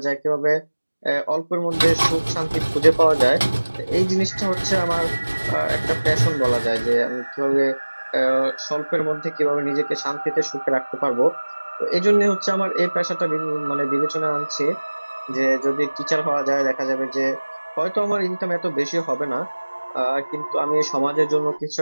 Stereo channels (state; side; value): inverted; both; correlation -1.00